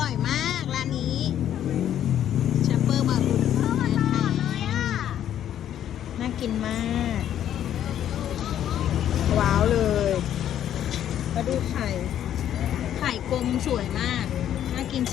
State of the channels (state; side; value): quieter; right; 10.7 dB